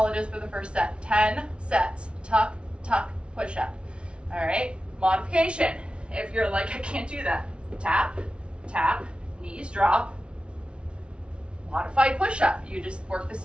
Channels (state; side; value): late; left; 0.058 ms